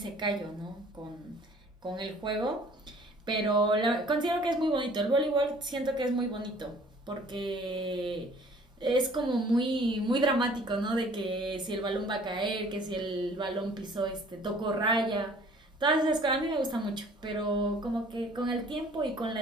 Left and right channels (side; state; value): both; normal; correlation 0.53